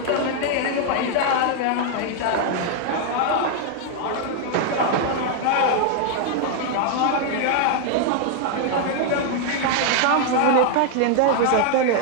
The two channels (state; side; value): different; both; correlation 0.00